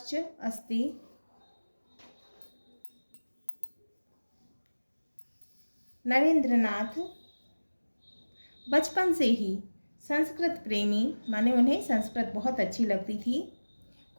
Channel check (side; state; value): both; inverted; correlation -1.00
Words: अस्ति। नरेंद्रनाथ बचपन से ही संस्कृत प्रेमी, उन्हें संस्कृत बहुत अच्छी लगती थी।